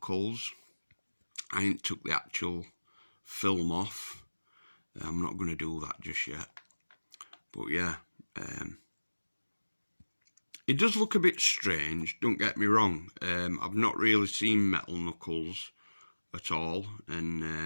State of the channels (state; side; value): inverted; both; correlation -1.00